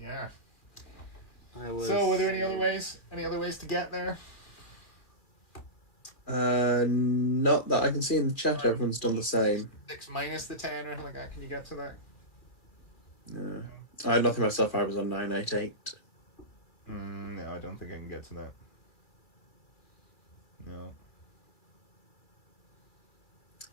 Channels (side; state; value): right; late; 2.3 ms